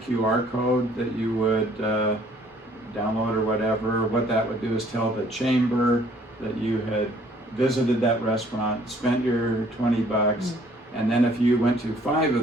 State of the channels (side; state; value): both; normal; correlation 0.59